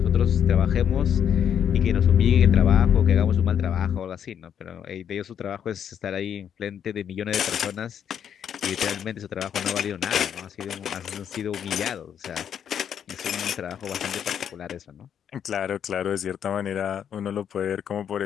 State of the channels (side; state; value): right; quieter; 8.7 dB